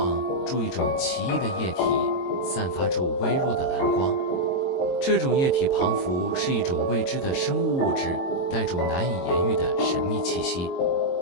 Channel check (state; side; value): late; right; 22 ms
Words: 住一种奇异的液体，散发出微弱的蓝光。这种液体旁符是一种未知的生物物质，带着难以言喻的神秘气息。